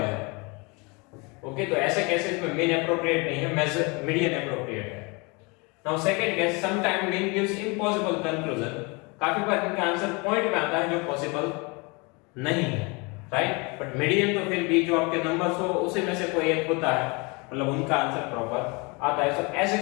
ओके, तो ऐसे केसेस में मीन एप्रोप्रिएट नहीं है, मेजर मीडियन एप्रोप्रिएट है। Now second case, some time mean gives impossible conclusion, काफी बार इनका आंसर पॉइंट में आता है जो पॉसिबल नहीं है, राइट। बट मीडियन तो फिर भी जो आपके नंबर्स हो उसी में से कोई एक होता है, मतलब उनका आंसर प्रॉपर आता है। तो ऐसे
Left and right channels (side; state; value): right; quieter; 28.9 dB